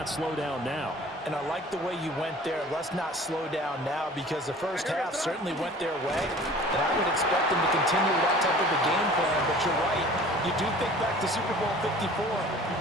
slow down now. And I like the way you went there. Let's not slow down now, because the first half certainly went their way. And I would expect them to continue that type of a game plan. But you're right. You do think back to Super Bowl 54.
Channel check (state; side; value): normal; both; correlation 0.46